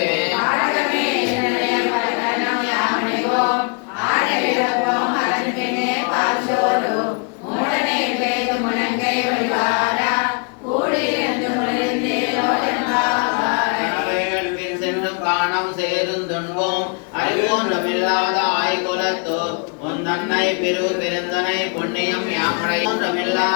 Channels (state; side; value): quieter; right; 35.6 dB